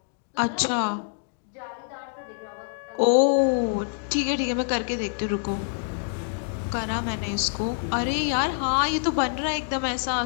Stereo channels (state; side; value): silent; right; digital silence